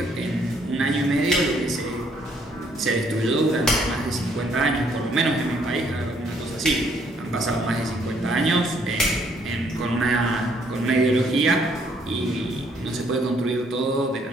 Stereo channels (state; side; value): normal; both; correlation 0.67